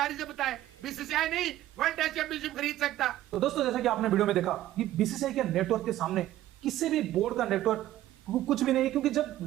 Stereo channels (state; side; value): quieter; left; 14.0 dB